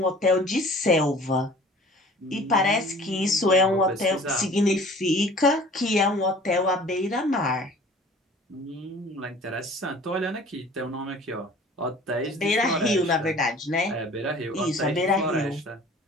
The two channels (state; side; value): normal; both; correlation 0.48